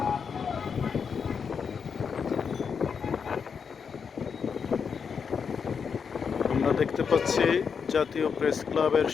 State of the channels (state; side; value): quieter; right; 6.3 dB